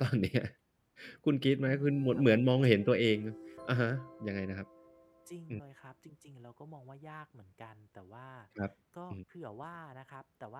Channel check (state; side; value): identical; both; correlation 1.00